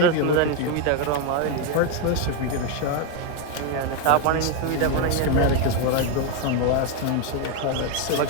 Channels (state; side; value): different; both; correlation 0.02